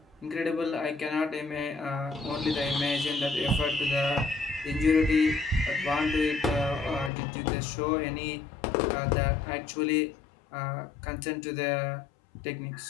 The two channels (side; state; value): right; drops out; at 7.1 s